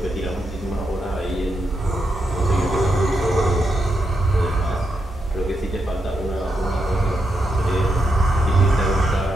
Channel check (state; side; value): normal; both; correlation 0.83